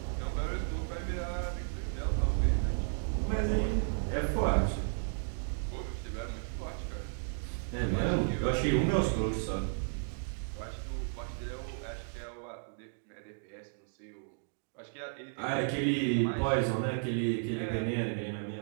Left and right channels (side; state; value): left; silent; digital silence